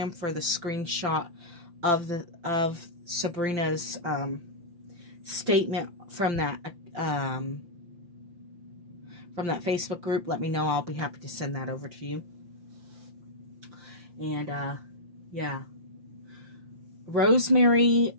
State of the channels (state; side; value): late; left; 5.8 ms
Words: for the screenshot of Sabrina's statement from that Facebook group, let me know. I'll be happy to send that over to you. And yeah, Rosemary